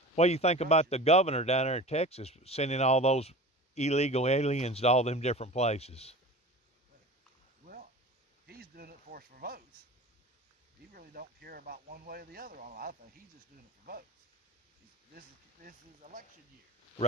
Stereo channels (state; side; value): normal; both; correlation 0.35